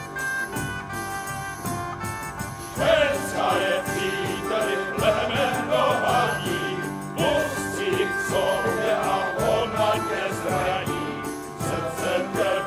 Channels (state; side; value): identical; both; correlation 1.00